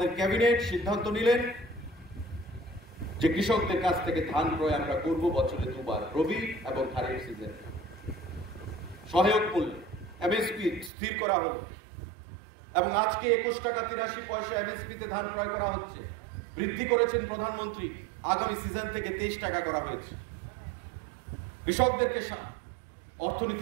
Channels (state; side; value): drops out; left; at 10.9 s